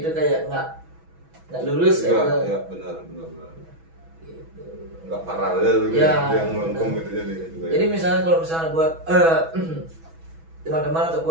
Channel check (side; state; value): left; late; 6.1 ms